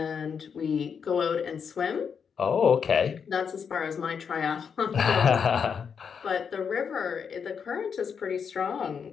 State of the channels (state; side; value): quieter; right; 6.6 dB